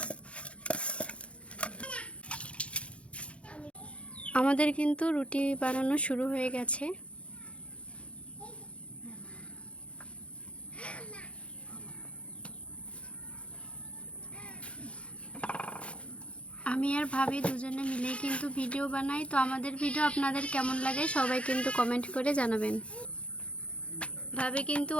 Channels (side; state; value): right; late; 0.061 ms